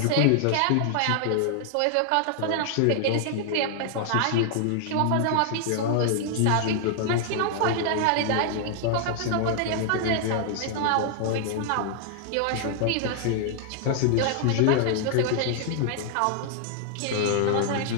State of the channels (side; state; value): both; different; correlation 0.00